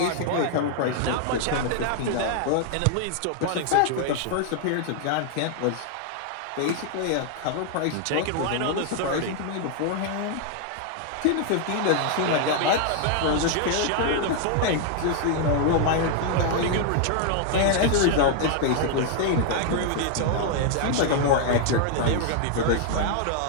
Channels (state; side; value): different; both; correlation 0.00